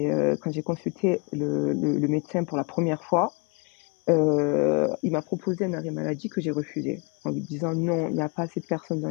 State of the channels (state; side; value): quieter; right; 32.8 dB